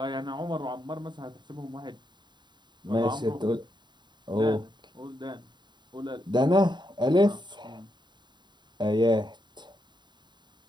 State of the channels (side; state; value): left; late; 0.22 ms